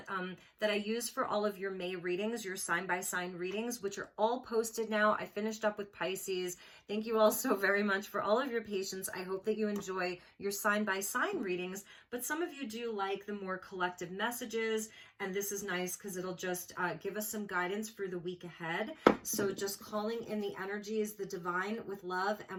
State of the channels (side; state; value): both; identical; correlation 1.00